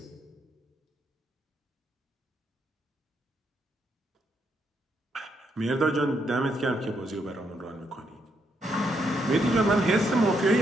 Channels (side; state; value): both; normal; correlation 0.77